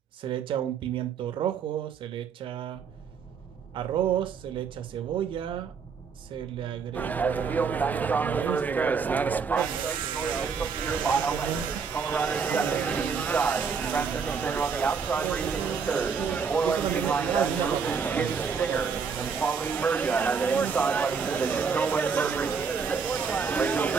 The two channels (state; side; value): quieter; left; 5.8 dB